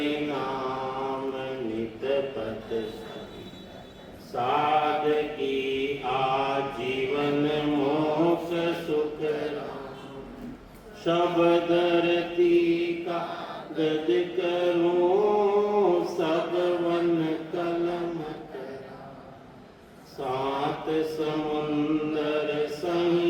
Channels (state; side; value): identical; both; correlation 1.00